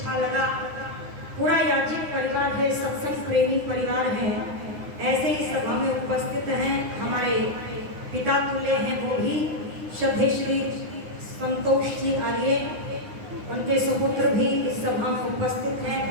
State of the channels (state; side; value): late; left; 9.7 ms